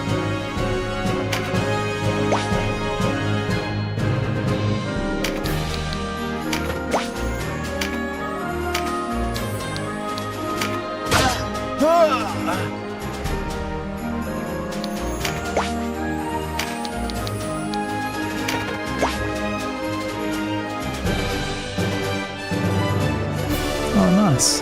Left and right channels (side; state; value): both; identical; correlation 1.00